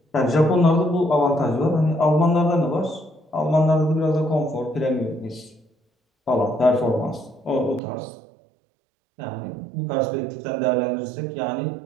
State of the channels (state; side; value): drops out; left; at 7.8 s